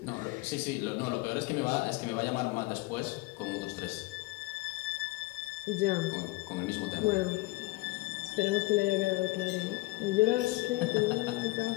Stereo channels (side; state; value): right; quieter; 21.4 dB